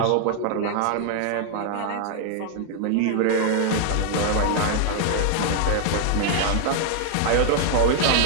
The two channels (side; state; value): both; different; correlation 0.00